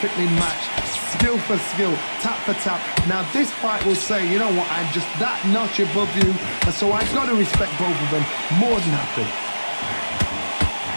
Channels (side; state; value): both; inverted; correlation -1.00